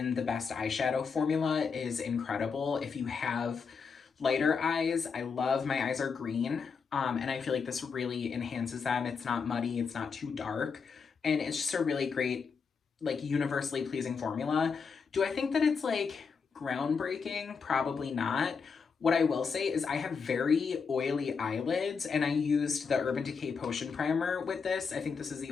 the Best Eyeshadow formula is incredible. If you have lighter eyes, I love, my eyes are green, and I feel like this really enhances them. It's not muddy, it's not too dark, and it's just a really great, like, universally pleasing formula. Do I think that it's like groundbreaking? Probably not. What I will say is I have very oily eyelids, and I used the Urban Decay Potion Primer with this. I think this is the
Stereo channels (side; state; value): right; quieter; 5.6 dB